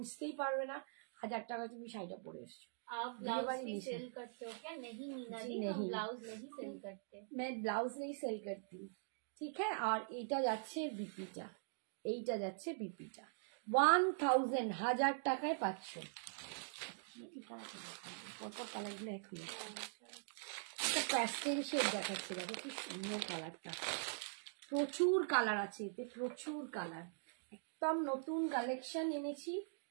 পারবে না 1000 টাকা তুমি শাড়িটা পরে এসছো। आप ब्लाउज भी सेल करते हो क्या? नहीं मीना जी, हम ब्लाउज नहीं सेल करते। मैं ब्लाउज नहीं सेल करती, ठीक है। আর এইটা যাচ্ছে বিপিটা, এইটা যাচ্ছে বিপিটা। 1000, 1000 টাকায় পাচ্ছ। পরপর কালারগুলো একই, একটা প্যাস্টেল শেড দেখাচ্ছে, দেখো কি সুন্দর কালারটা, প্রচুর কালার আছে এতে, প্রচুর কালার। একদম নতুন কালেকশন এনেছি,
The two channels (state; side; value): silent; left; digital silence